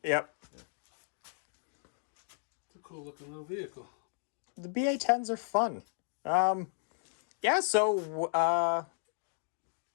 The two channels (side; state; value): right; silent; digital silence